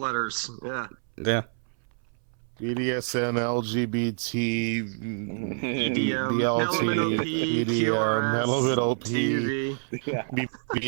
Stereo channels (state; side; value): silent; left; 60 dB below the other